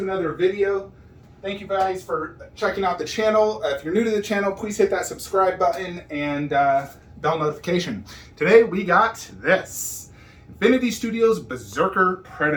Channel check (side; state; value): both; identical; correlation 1.00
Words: another video. Thank you guys for checking out the channel. If you're new to the channel, please hit that subscribe button and bell notification. Today we got this Infinity Studios Berserker